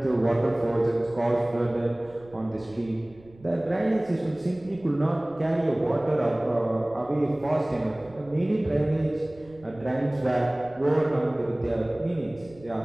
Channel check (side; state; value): right; noise; rumble, 24 dB below the sound